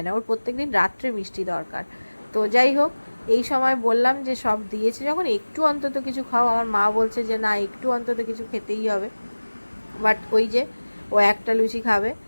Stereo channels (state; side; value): inverted; both; correlation -1.00